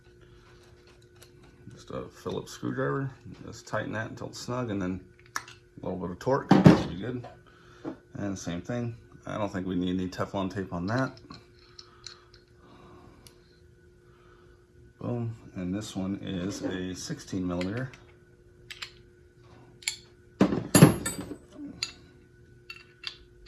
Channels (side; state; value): both; identical; correlation 1.00